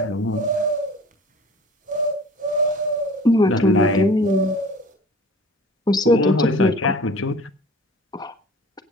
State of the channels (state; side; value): normal; both; correlation 0.44